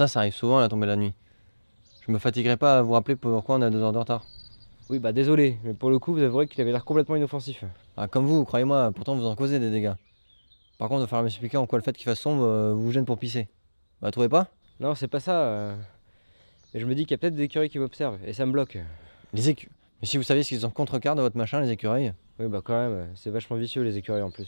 arrive souvent à la tombée de la nuit. Je me fatiguerai pas à vous rappeler pourquoi on a 2 heures de retard. Oui, bah, désolé, mais pour le coup, vous avouerez qu'il avait l'air complètement inoffensif. Ah comme vous, croyez-moi, pourtant vous en causez des dégâts. Par contre, il va falloir m'expliquer en quoi le fait qu'il fasse sombre vous gêne pour pisser. Vous la trouvez pas? Non, c'est pas ça. Mais je me dis qu'il y a peut-être des écureuils qui m'observent, et ça me bloque. Les écureuils. Mais si vous saviez ce qu'ils ont contre-cœur de votre machin, les écureuils. Oui, bah, quand même, c'est vachement vicieux les écureuils en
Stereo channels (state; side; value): inverted; both; correlation -1.00